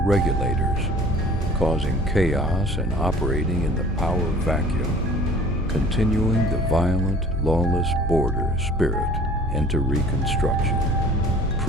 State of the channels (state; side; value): normal; both; correlation 0.49